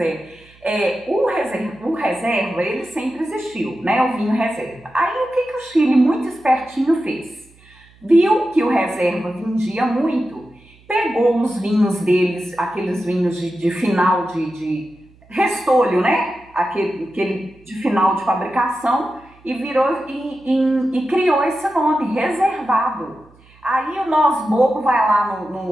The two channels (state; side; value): noise; right; hum, 28 dB below the sound